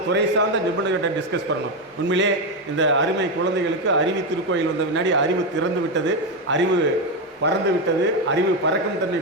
துறை சார்ந்த நிபுணர்கிட்ட டிஸ்கஸ் பண்ணணும். உண்மையிலே இந்த அருமை குழந்தைகளுக்கு அறிவு திருக்கோயில் வந்த முன்னாடி அறிவு திறந்து விட்டது, அறிவு பறந்து விட்டது, அறிவு பறக்கும் தன்மை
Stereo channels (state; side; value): normal; both; correlation 0.09